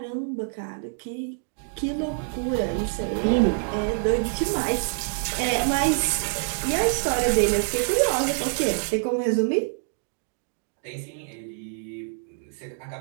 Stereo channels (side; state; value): left; silent; digital silence